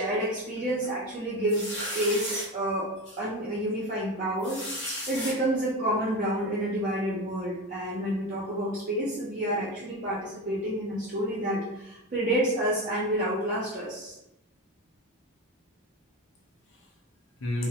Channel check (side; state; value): both; normal; correlation 0.23